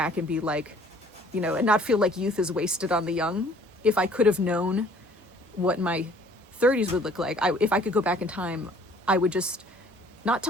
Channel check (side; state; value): both; normal; correlation 0.56